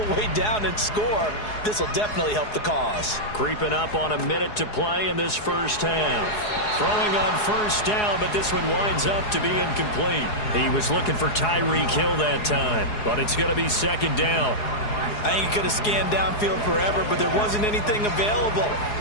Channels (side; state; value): right; late; 4.8 ms